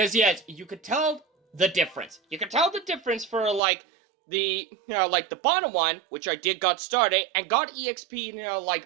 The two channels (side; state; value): left; drops out; at 3.6 s